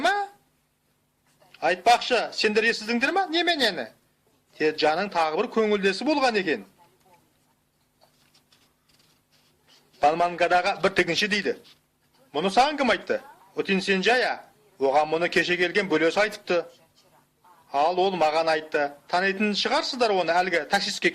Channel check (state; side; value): identical; both; correlation 1.00